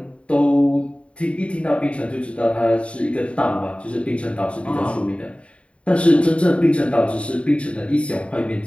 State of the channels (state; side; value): late; right; 0.061 ms